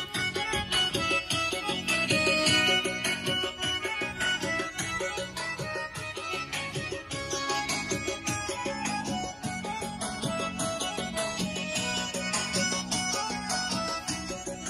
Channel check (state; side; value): identical; both; correlation 1.00